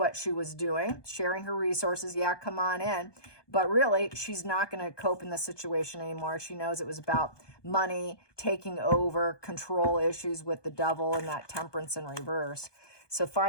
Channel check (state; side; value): late; right; 1.2 ms